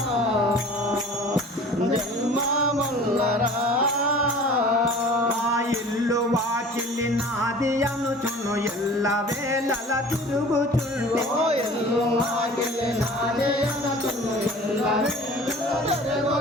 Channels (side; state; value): both; normal; correlation 0.44